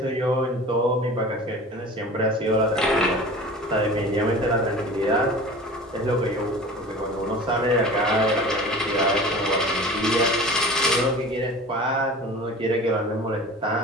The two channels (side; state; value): both; normal; correlation 0.38